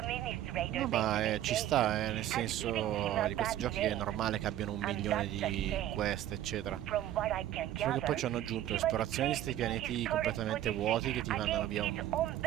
No, ma ci sta, nel senso di questi giochi che è normale che abbiano 1 milione di quest, eccetera. Solo che poi ci hanno aggiunto esplorazione di questi pianeti completamente vuoti che ti mandano via un...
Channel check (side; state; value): left; quieter; 12.5 dB